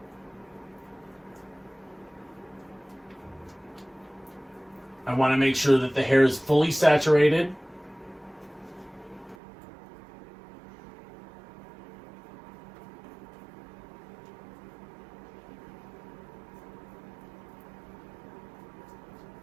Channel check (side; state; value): left; drops out; at 9.3 s